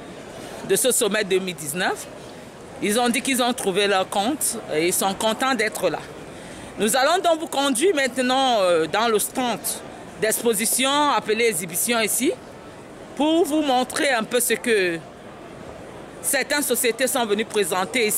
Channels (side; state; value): both; identical; correlation 1.00